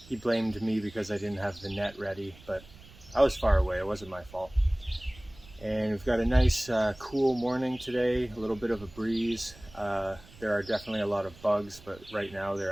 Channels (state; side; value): noise; right; rumble, 22 dB below the sound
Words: He blamed me because I didn't have the net ready, but I was far away, it wasn't my fault. And we've got a nice cool morning today, a little bit of a breeze. There are definitely a lot of bugs, but right now they're